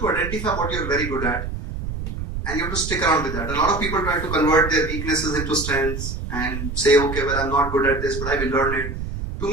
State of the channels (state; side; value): noise; right; rumble, 6 dB below the sound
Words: identify what you're very good at and you have to stick around with that. A lot of people try to convert their weaknesses into strengths and say, okay, well, I'm not good at this, but I will learn it. To